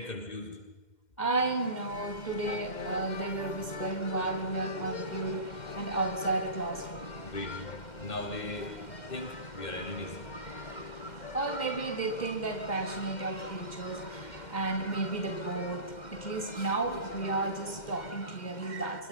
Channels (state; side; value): late; right; 2.1 ms